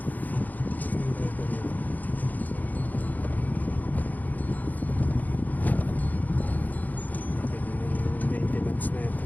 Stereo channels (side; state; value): right; late; 0.082 ms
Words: Maintenance na ito.